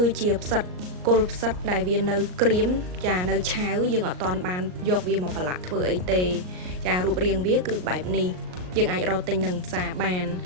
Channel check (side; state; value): left; late; 38 ms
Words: ឺជាផ្សិតគល់ផ្សិតដែលវានៅក្រៀមចានៅឆាវយើងអត់ទាន់បានយកវាមកប្រឡាក់ធ្វើអីទេចារូបរាងវាគឺបែបនេះយើងអាចរកទិញនឹងផ្សារបាន